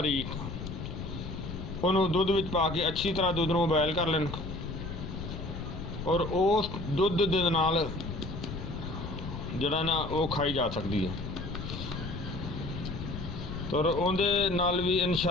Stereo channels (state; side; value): noise; left; rumble, 7 dB below the sound